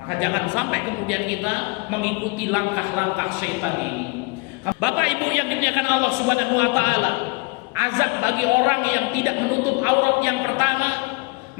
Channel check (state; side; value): quieter; right; 28.5 dB